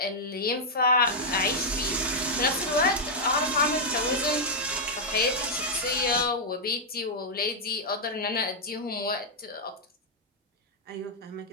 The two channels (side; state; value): both; normal; correlation -0.05